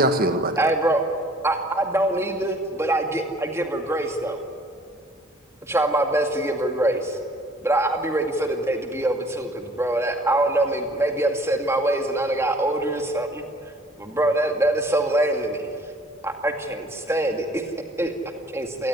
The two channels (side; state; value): both; normal; correlation 0.54